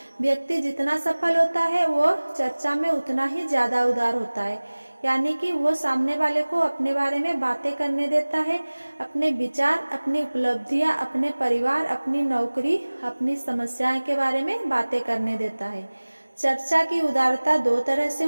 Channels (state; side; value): inverted; both; correlation -1.00